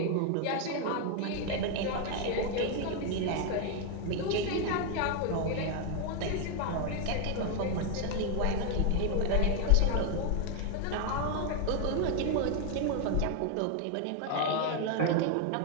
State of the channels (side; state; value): both; different; correlation 0.01